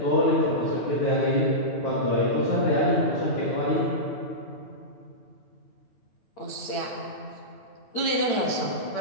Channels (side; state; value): right; late; 8.8 ms